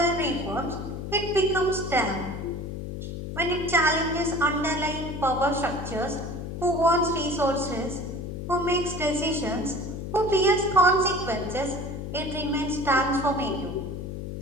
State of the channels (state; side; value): noise; left; hum, 7 dB below the sound